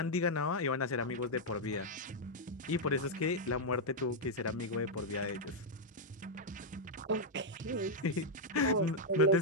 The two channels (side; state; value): both; normal; correlation -0.03